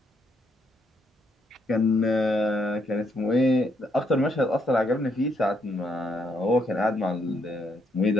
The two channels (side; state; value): both; normal; correlation 0.74